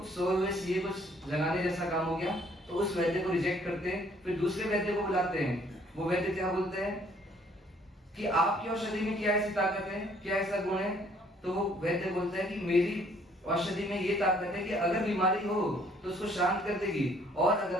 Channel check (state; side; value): normal; both; correlation 0.62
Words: सोए हुए सीए कुछ जगाने जैसा काम हो गया। तो उस वैद्य को रिजेक्ट करते हैं, फिर दूसरे वैद्य को बुलाते हैं। वो वैद्य क्या बोलते हैं कि आपकी औषधि में क्या ऐसी ताकत है, क्या ऐसा गुण है। तो वो वैद्य बोलता है कि मेरी औषधि में ये ताकत है कि अगर बीमारी हो तो उसको शांत कर देगी, और